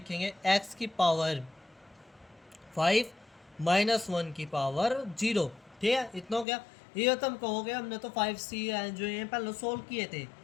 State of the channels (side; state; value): right; drops out; at 6.5 s